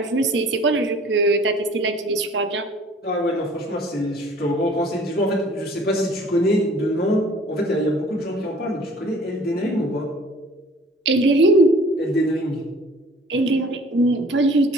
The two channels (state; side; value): normal; both; correlation 0.51